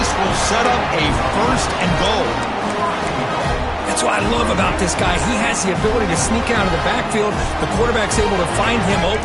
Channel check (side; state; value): both; identical; correlation 1.00